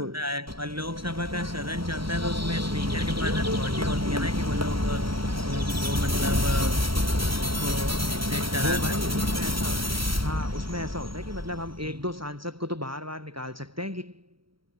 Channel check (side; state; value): left; late; 0.74 ms